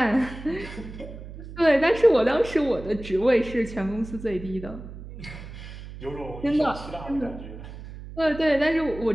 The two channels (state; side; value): noise; right; hum, 13 dB below the sound